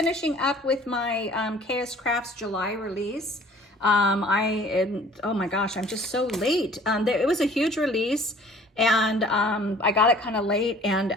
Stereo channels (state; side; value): normal; both; correlation 0.51